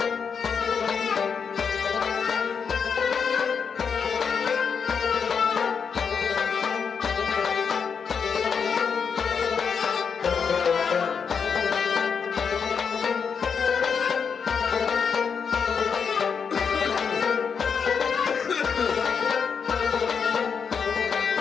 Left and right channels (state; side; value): quieter; right; 6.3 dB